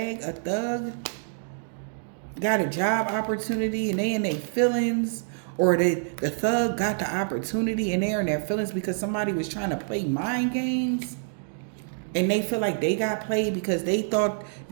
A thug got a job opportunity and they in their feelings, or the thug got the opportunity and they're in their feelings because somebody was trying to play mind games. And they feel like they got played because they thought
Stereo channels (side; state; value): left; silent; digital silence